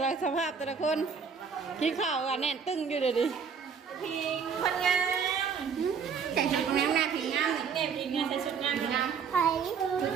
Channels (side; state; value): left; quieter; 6.3 dB